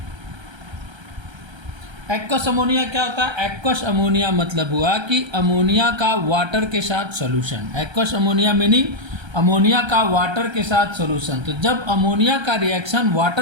Aqueous ammonia क्या होता है? एक्वस अमोनिया मतलब हुआ कि अमोनिया का वाटर के साथ solution. Aqueous ammonia meaning ammonia का वाटर के साथ सॉल्यूशन। तो जब अमोनिया का रिएक्शन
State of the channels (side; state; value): left; late; 1.3 ms